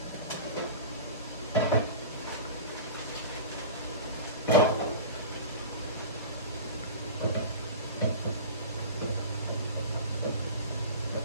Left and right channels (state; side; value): inverted; both; correlation -0.33